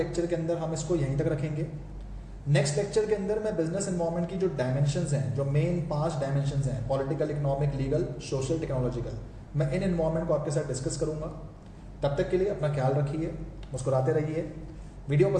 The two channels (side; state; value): both; identical; correlation 1.00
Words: के अंदर हम इसको यहीं तक रखेंगे। नेक्स्ट लेक्चर के अंदर मैं बिजनेस एनवायरनमेंट की जो डायमेंशंस हैं, जो मेन 5 डायमेंशंस हैं, political, economic, legal, social, technological, मैं इन एनवायरनमेंट को आपके साथ डिस्कस करूंगा। तब तक के लिए अपना ख्याल रखिए, मुस्कुराते रहिए। वीडियो